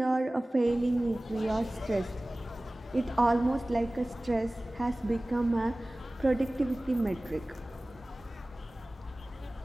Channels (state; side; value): normal; both; correlation 0.98